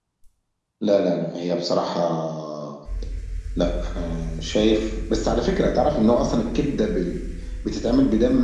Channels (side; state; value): both; identical; correlation 1.00